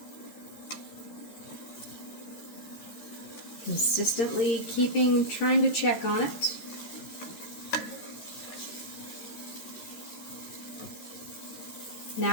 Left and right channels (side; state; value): right; late; 13 ms